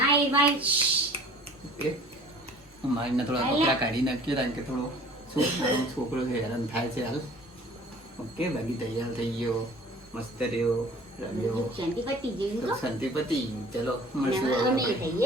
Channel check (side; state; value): both; normal; correlation 0.48